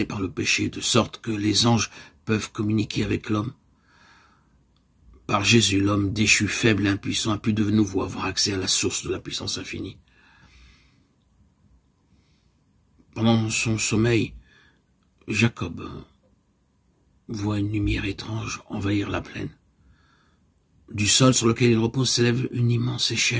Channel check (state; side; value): identical; both; correlation 1.00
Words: par le péché, de sorte que les anges peuvent communiquer avec l'homme. Par Jésus, l'homme déchu, faible et impuissant a pu de nouveau avoir accès à la source de la puissance infinie. Pendant son sommeil, Jacob voit une lumière étrange envahir la plaine. Du sol sur lequel il repose s'élève une immense